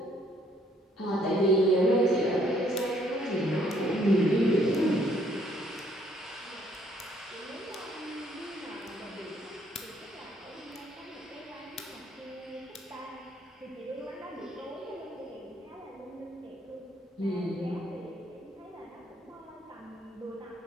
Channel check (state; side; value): normal; both; correlation 0.66